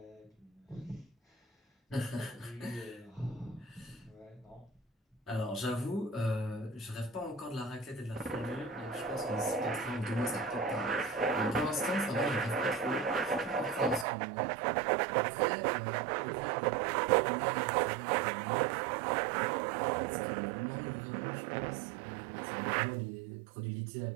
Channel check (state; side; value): drops out; left; at 14.1 s